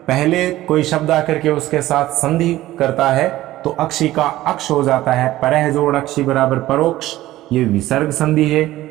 पहले कोई शब्द आकर के उसके साथ संधि करता है तो अक्षी का अक्ष हो जाता है। परह जोड़ अक्षी बराबर परोक्ष। ये विसर्ग संधि है,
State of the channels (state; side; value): quieter; left; 15.6 dB